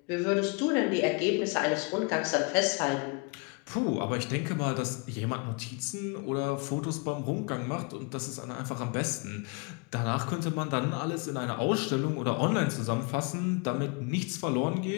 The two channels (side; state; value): right; quieter; 32.1 dB